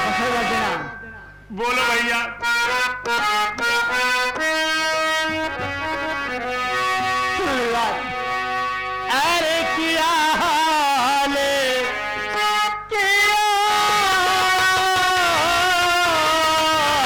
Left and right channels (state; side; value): identical; both; correlation 1.00